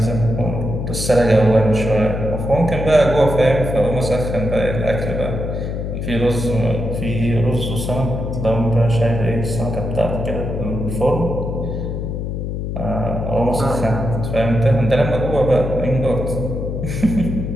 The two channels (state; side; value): noise; left; hum, 4 dB below the sound